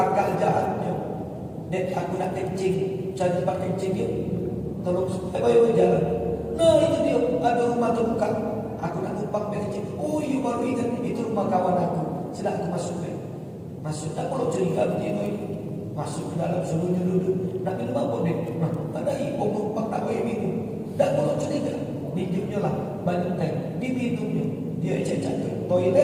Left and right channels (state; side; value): identical; both; correlation 1.00